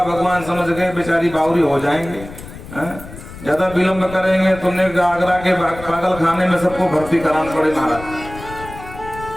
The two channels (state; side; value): noise; left; rumble, 15 dB below the sound